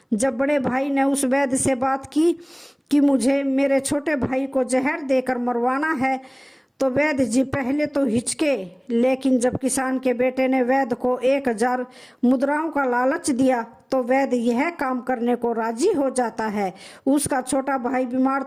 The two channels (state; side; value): identical; both; correlation 1.00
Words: जब बड़े भाई ने उस वेद से बात की कि मुझे मेरे छोटे भाई को जहर देकर मरवाना है, तो वैद्य जी पहले तो हिचके, लेकिन जब किसान के बेटे ने वैद्य को 1000 मुद्राओं का लालच दिया तो वैद्य यह काम करने को राजी हो जाता है। उसका छोटा भाई बीमार